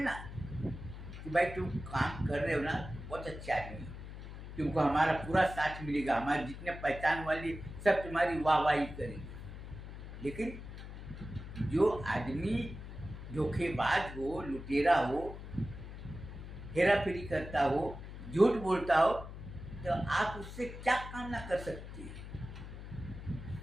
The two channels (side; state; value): left; noise; hum, 11 dB below the sound